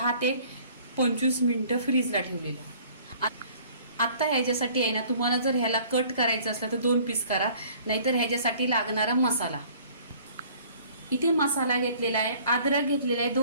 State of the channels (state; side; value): inverted; both; correlation -0.53